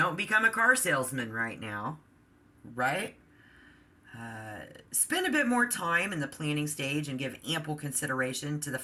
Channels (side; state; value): both; identical; correlation 1.00